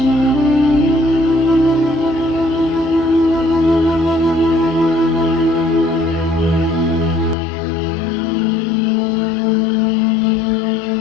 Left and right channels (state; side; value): drops out; right; at 7.4 s